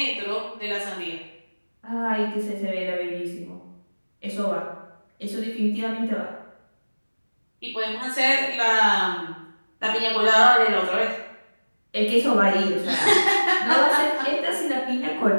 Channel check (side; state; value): both; inverted; correlation -1.00